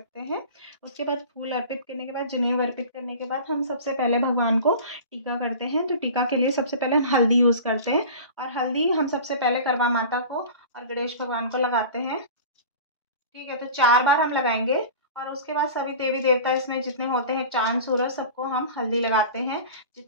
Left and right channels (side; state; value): both; inverted; correlation -0.37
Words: हैं। उसके बाद फूल अर्पित करने के बाद, जनेऊ अर्पित करने के बाद हम सबसे पहले भगवान को टीका करते हैं। तो टीका के लिए सबसे पहले हम हल्दी यूज़ करते हैं। और हल्दी हम सबसे पहले करवा माता को और गणेश भगवान को लगाते हैं। ठीक है, तो 4 बार हम लगाएंगे। और उसके बाद सभी देवी देवता इसमें जितने होते हैं, चांद सूरज, सबको हम हल्दी लगाते हैं।